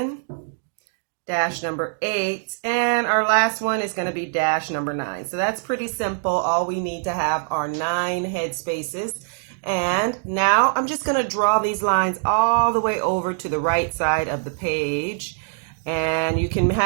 dash number 8, and our last one is going to be dash number 9. So that's pretty simple. All we need to have are 9 head spaces. And now I'm just going to draw these lines all the way over to the right side of the page. And you can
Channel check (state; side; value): silent; left; digital silence